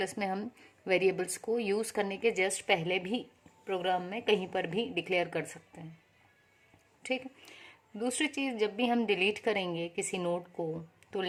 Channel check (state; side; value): identical; both; correlation 1.00